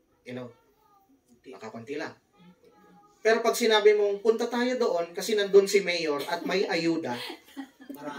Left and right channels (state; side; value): identical; both; correlation 1.00